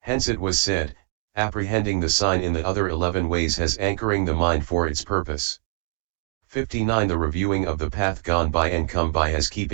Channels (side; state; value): left; silent; 63 dB below the other